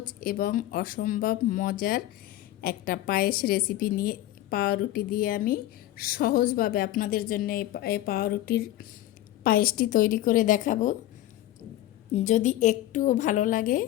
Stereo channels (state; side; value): quieter; right; 14.6 dB